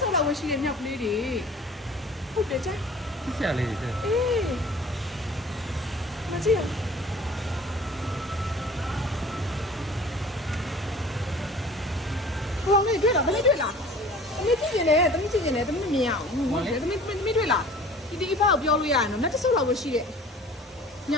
ဆော့လောက်ဝရှိတဲ့မြောက်ကလေးတွေဟုတ်တယ်ကြာ ဆရာလေးတွေ အေးမကြည့်ဟိုငါတွေ့လားသမီးတွေ့လားသမီးကြည့်နေတယ်သမီးကြည့်နေတယ်သမီးမမြင်အောင်ဟုတ်တယ်သမီးတွေ့လားဒီအဖေကိုပြောလို့ရရင်တော့တက်ဆော့လောက်ဝရှိတဲ့မြ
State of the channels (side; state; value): both; normal; correlation 0.46